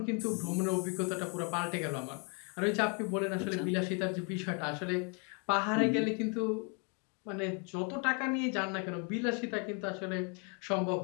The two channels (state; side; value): quieter; right; 36.6 dB